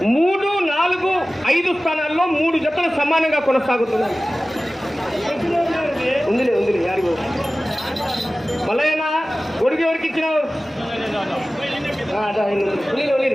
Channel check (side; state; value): both; normal; correlation 0.97